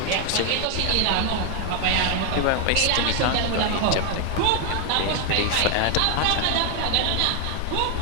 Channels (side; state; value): both; different; correlation 0.01